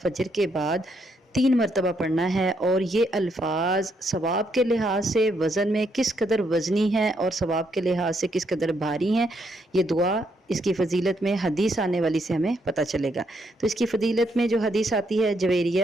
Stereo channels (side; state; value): both; normal; correlation 0.75